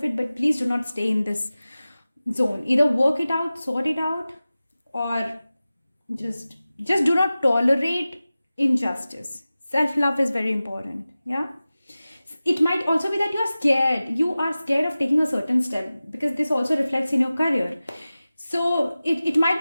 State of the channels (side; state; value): both; inverted; correlation -0.96